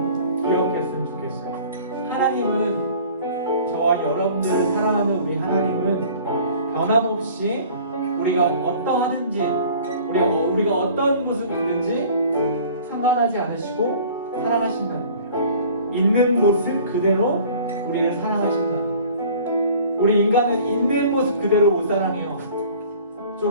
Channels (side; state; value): both; inverted; correlation -0.48